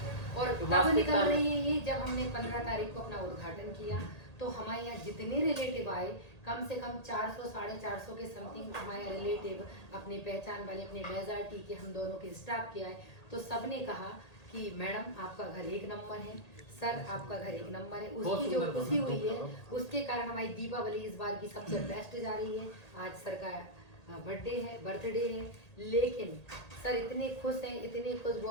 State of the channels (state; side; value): late; right; 1.8 ms